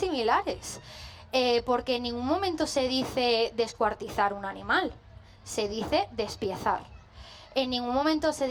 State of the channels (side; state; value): both; identical; correlation 1.00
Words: porque en ningún momento se dice descuartizar un animal, se dice despiezar. En ningún momento se